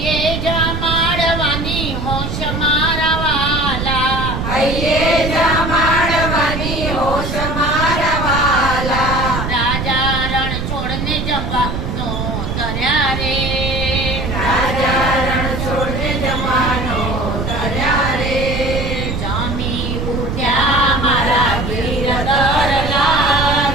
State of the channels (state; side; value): noise; right; rumble, 3 dB below the sound